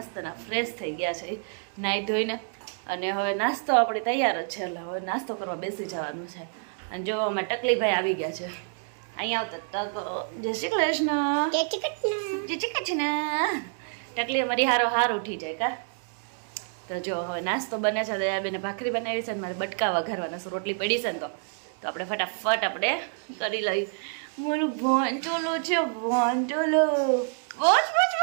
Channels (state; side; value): silent; left; 59 dB below the other